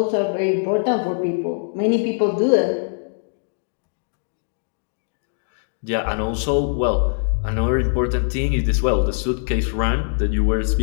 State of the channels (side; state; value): right; silent; digital silence